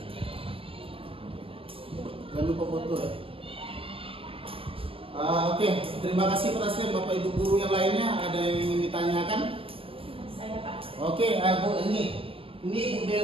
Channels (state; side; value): late; left; 0.26 ms